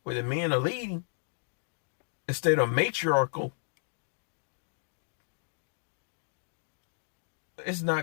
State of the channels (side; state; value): right; silent; digital silence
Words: where the men are leading instead of matriarchal. It's